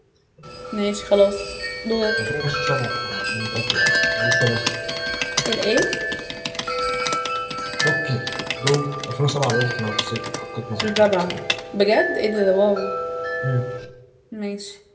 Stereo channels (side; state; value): both; identical; correlation 1.00